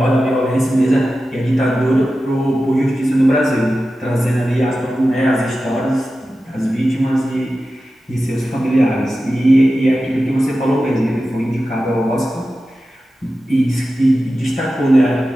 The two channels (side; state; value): both; normal; correlation 0.93